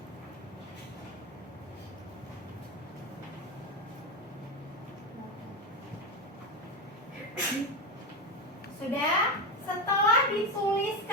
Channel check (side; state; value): both; normal; correlation 0.15